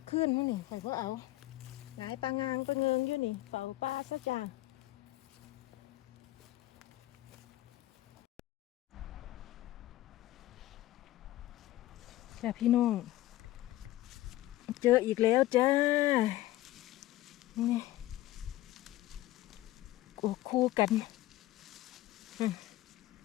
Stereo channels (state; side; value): quieter; right; 16.1 dB